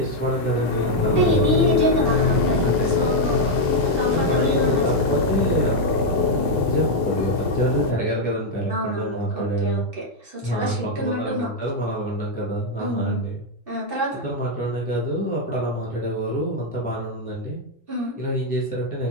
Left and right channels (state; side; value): normal; both; correlation 0.00